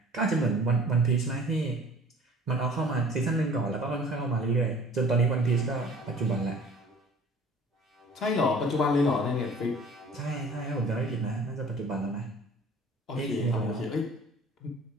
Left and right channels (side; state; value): both; normal; correlation 0.48